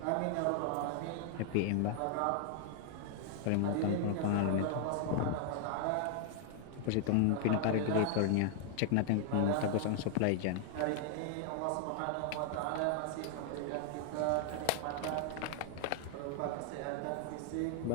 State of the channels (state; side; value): different; both; correlation 0.00